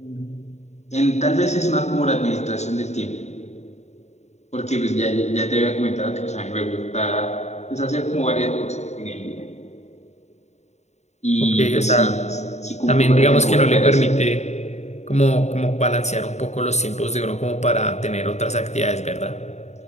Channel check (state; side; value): late; right; 0.32 ms